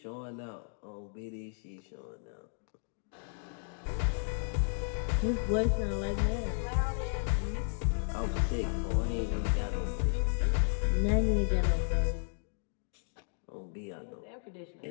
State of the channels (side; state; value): right; silent; 55 dB below the other